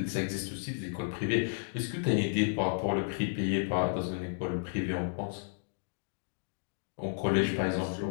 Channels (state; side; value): silent; right; digital silence